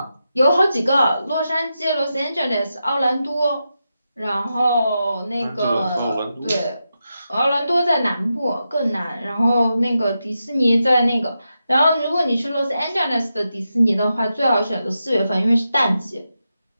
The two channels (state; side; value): inverted; both; correlation -0.88